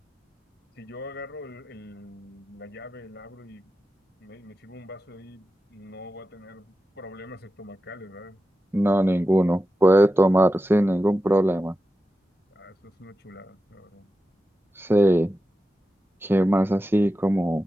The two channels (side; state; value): both; normal; correlation 0.92